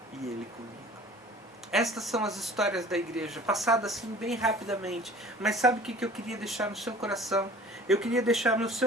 e ele comigo. Estas são as histórias da igreja, passadas assim bem rapidamente. Mas sabe o que eu queria deixar no seu coração? Eu queria deixar no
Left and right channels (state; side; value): normal; both; correlation 0.46